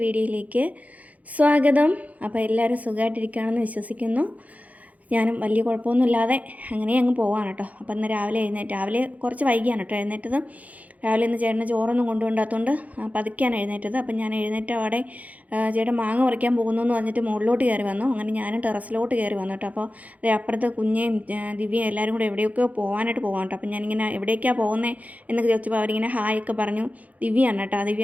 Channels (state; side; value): late; left; 0.073 ms